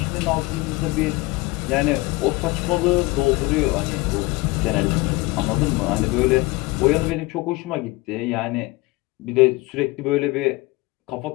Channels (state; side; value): quieter; right; 22.5 dB